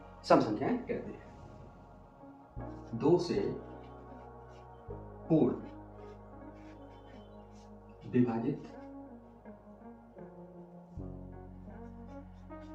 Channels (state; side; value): identical; both; correlation 1.00